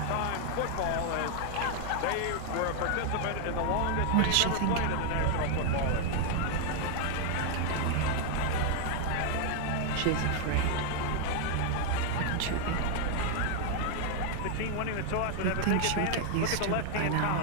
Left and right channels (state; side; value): different; both; correlation 0.00